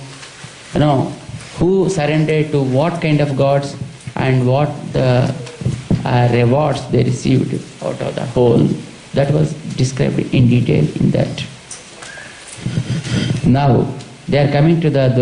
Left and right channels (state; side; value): identical; both; correlation 1.00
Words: who surrendered to what kind of gods and what the rewards they received out of the whole. That was described in detail in that. Now, they are coming to the